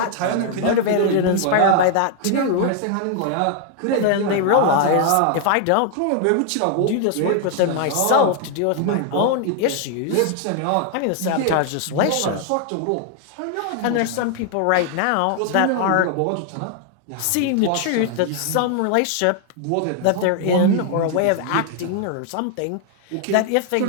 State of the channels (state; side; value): different; both; correlation 0.00